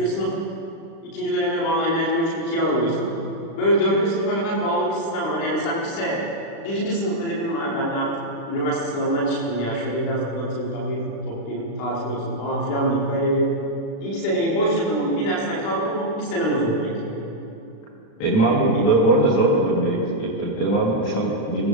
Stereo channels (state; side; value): late; right; 36 ms